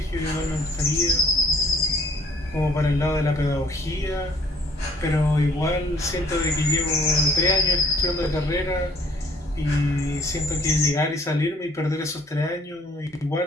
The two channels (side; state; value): both; normal; correlation 0.60